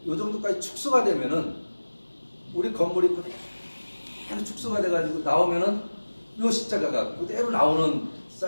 요 정도까지 축소가 되면은 우리 건물이 그대로 축소가 돼 가지고 나오면은 요 십자가가 그대로 나오는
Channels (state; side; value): inverted; both; correlation -1.00